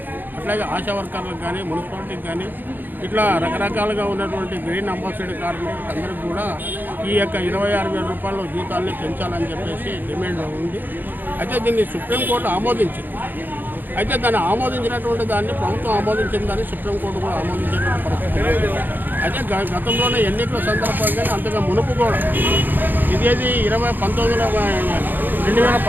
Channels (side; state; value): left; late; 0.089 ms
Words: అట్లాగే ఆశా వర్కర్లకు కానీ, మున్సిపాలిటీకి కానీ, ఇట్లా రకరకాలుగా ఉన్నటువంటి గ్రీన్ అంబాసిడర్ కార్మికులకు అందరికీ కూడా ఈ యొక్క 26,000 రూపాయల జీతాలని పెంచాలని చెప్పేసి డిమాండ్ ఉంది. అయితే దీన్ని సుప్రీంకోర్టు ఆమోదించింది. అయితే దాన్ని ఆమోదించినటువంటి దాన్ని ప్రభుత్వం ఆమోదించిందని సుప్రీంకోర్టు కూడా ఆమోదించినటువంటి పరిస్థితి. అయితే గతంలోనే ఎన్నికల సందర్భంగానే అంతగా మునుపు కూడా ఇదేది 2019లో